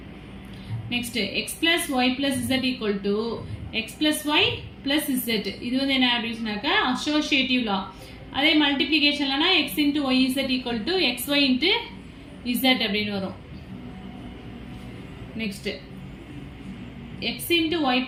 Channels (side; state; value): both; identical; correlation 1.00